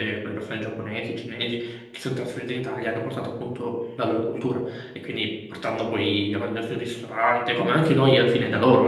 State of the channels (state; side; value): identical; both; correlation 1.00